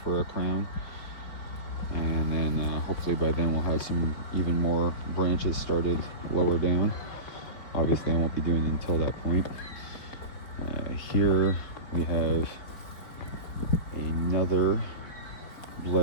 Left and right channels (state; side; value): late; right; 4.7 ms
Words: for a crown. And then hopefully by then we'll have some even more branches started lower down. Obviously I won't be doing it until that point. Here we have another